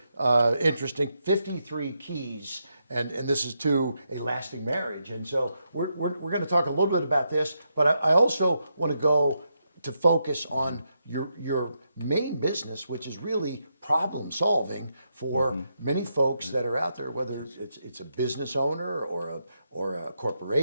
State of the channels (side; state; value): both; inverted; correlation -0.82